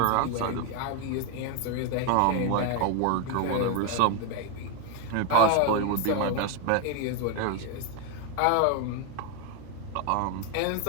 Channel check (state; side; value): different; both; correlation 0.01